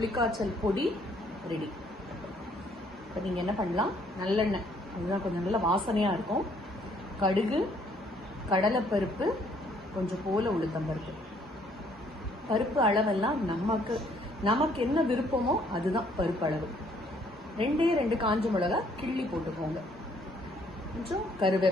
பொடி ரெடி. இப்போ நீங்கள் என்ன பண்ணலாம், நல்லெண்ணெய், அதுதான் கொஞ்சம் நல்ல வாசனையாக இருக்கும். கடுகு, கடலைப்பருப்பு, கொஞ்சம் போல உளுத்தம்பருப்பு. பருப்பு அளவெல்லாம் நமக்கு என்ன விருப்பமோ அதுதான் பருப்பு அளவு. 2 காஞ்ச மிளகா கிள்ளி போட்டுக்கோங்க. கொஞ்சம்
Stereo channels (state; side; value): normal; both; correlation 0.64